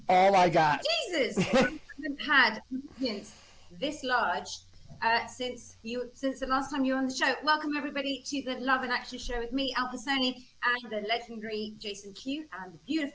all I got. Jesus, I haven't had audience this large since the last time you were on the show. Welcome everybody to the Love and Action Show with me, Alpa Soni, and the legendary Jason Q and the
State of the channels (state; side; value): identical; both; correlation 1.00